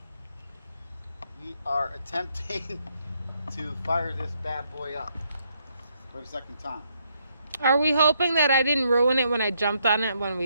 We are attempting to fire this bad boy up for the second time. Are we hoping that I didn't ruin it when I jumped on it when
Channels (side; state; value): both; inverted; correlation -0.75